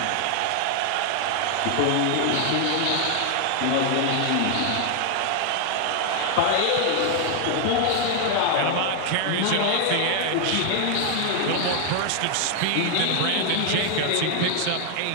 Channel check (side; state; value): both; different; correlation 0.00